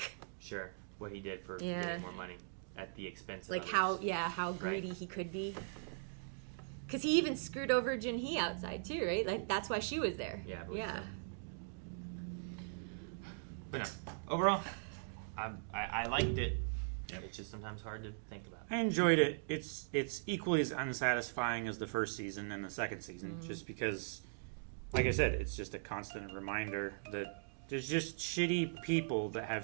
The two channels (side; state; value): left; silent; digital silence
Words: sure. What he did for getting more money at the expense of like others. how greedy he could be. Because he even screwed over Junhee outside too, right? Like that's why she was there. Yeah. Yeah. But no, overall, I liked it. It's just sometimes hard to think about. I enjoyed it. It's equally as unsatisfying as the first season and the second season, just because, like I said, it's just a constant reminder that there's just shitty people that